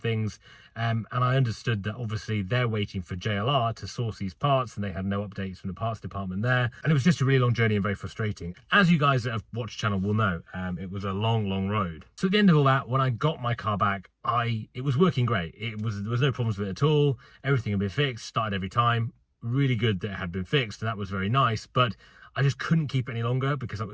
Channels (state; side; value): identical; both; correlation 1.00